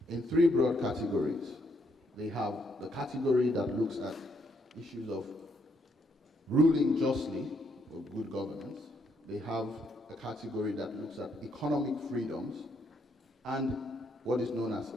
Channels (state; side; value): normal; both; correlation 0.73